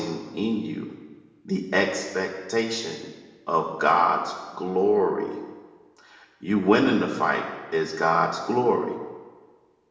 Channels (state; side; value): identical; both; correlation 1.00